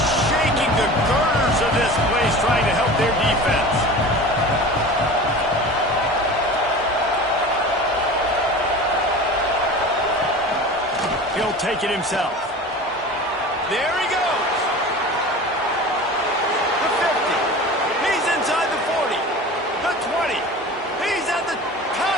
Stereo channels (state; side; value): normal; both; correlation 0.36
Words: shaking the girders of this place, trying to help their defense. He'll take it himself. There he goes. The 50. He's inside the 40. The 20. He's at the